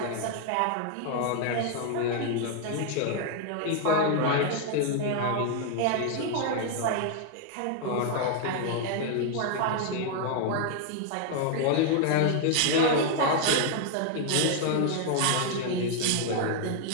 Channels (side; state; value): both; different; correlation 0.00